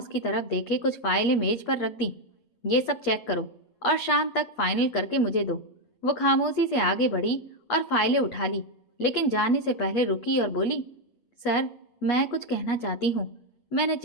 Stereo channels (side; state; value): right; late; 8.4 ms